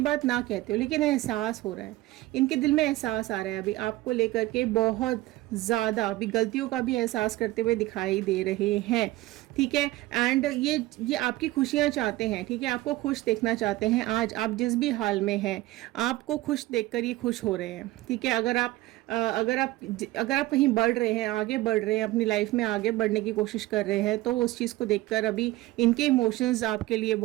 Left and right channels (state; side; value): quieter; left; 18.0 dB